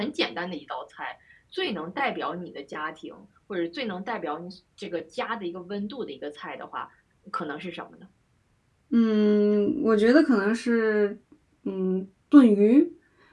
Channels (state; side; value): identical; both; correlation 1.00